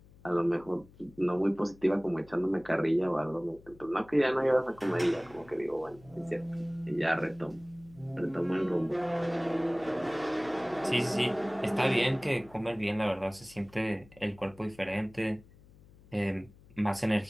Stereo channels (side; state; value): left; noise; hum, 24 dB below the sound